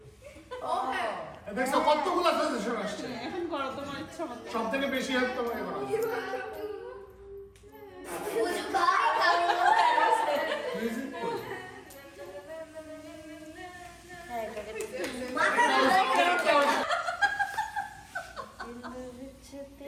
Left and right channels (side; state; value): both; identical; correlation 1.00